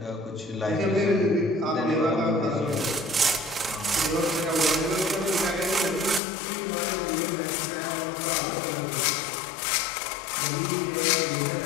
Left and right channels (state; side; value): drops out; right; at 6.2 s